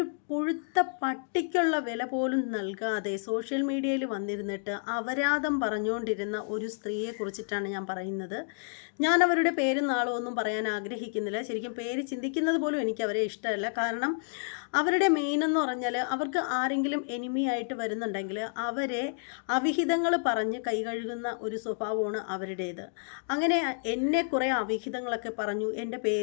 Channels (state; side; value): silent; right; digital silence